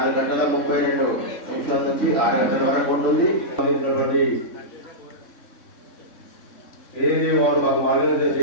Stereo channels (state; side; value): late; right; 3.6 ms